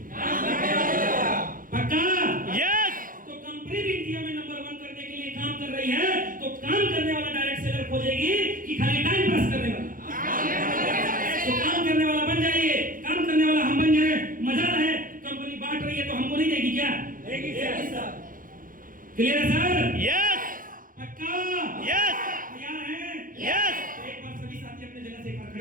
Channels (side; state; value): left; late; 0.40 ms